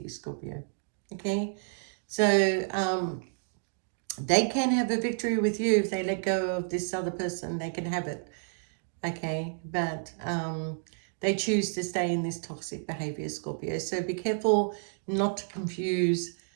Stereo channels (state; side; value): silent; left; digital silence